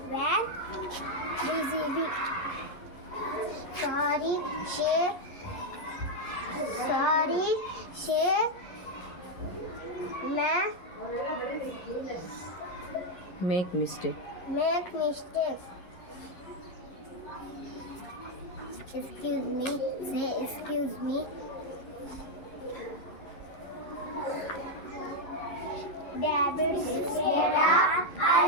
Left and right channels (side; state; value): right; late; 11 ms